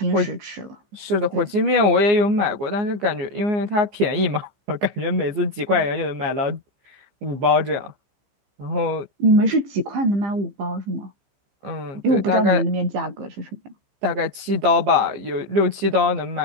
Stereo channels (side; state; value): left; late; 14 ms